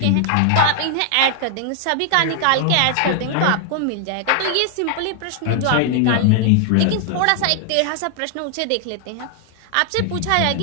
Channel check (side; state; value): both; different; correlation 0.00